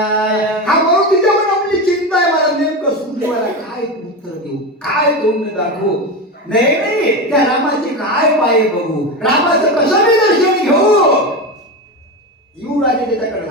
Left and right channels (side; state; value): both; normal; correlation 0.19